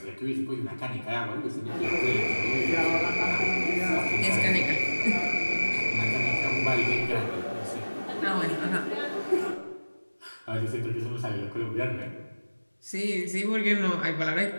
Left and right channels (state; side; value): inverted; both; correlation -1.00